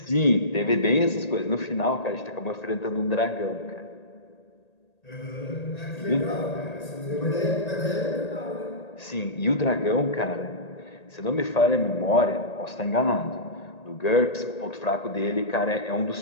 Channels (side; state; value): right; late; 1.8 ms